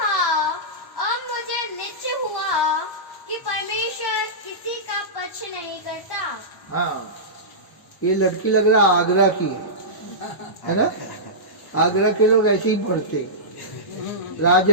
अब मुझे निश्चय हुआ कि परमेश्वर किसी का पक्ष नहीं करता। हाँ, ये लड़की लग रहा आगरा की है ना? आगरा के लोग ऐसे ही पढ़ते,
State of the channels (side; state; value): right; late; 1.0 ms